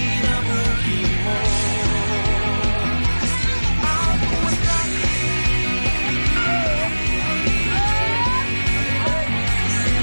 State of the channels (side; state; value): both; inverted; correlation -1.00